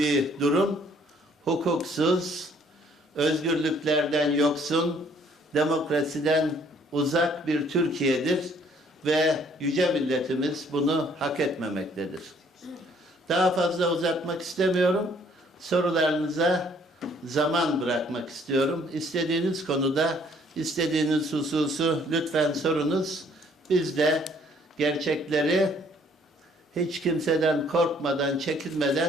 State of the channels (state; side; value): normal; both; correlation 0.62